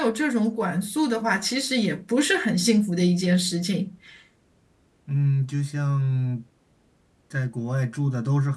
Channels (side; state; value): both; identical; correlation 1.00